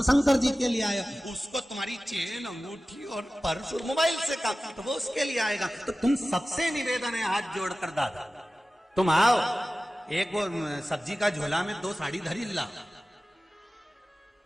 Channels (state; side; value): normal; both; correlation 0.96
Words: शंकर जी के लिए आए, उसको तुम्हारी चेन अंगूठी और पर्स और मोबाइल से काम तो वो उसके लिए आएगा। तो तुम सबसे निवेदन है हाथ जोड़कर दादा तुम आओ, एक वो सब्जी का झोला में 2 साड़ी धरी ला,